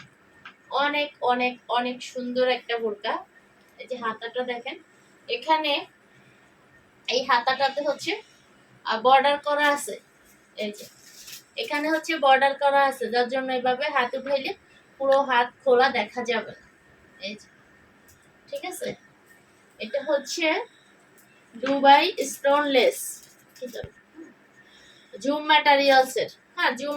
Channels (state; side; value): identical; both; correlation 1.00